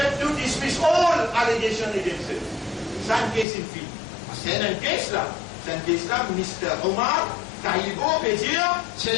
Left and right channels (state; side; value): drops out; right; at 3.5 s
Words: to dismiss all allegations against it. C'est un case in fille. C'est un case là. C'est un case là, Mr. Omar, Taïbo, peut dire, c'est